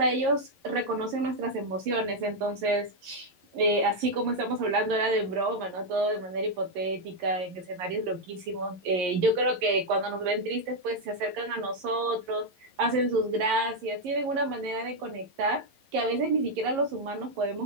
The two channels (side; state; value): left; late; 11 ms